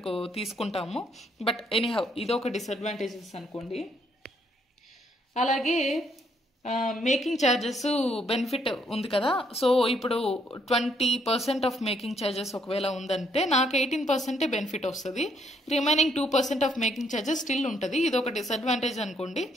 తీసుకుంటాము. బట్ ఎనీహౌ ఇది ఒక డిసడ్వాంటేజెస్ అనుకోండి. అలాగే మేకింగ్ ఛార్జెస్ బెనిఫిట్ ఉంది కదా. సో ఇప్పుడు 20% ఆఫ్ మేకింగ్ ఛార్జెస్ ఒకవేళ ఉందంటే నాకు 18% బెనిఫిట్ వస్తుంది. Remaining 2% of making charges still ఉంటుంది. ఇది ఒక డిసడ్వాంటేజ్ అనుకోండి,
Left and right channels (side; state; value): both; normal; correlation 0.71